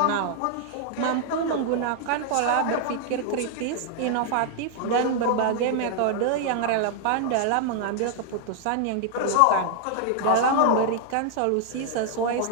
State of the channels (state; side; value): different; both; correlation 0.00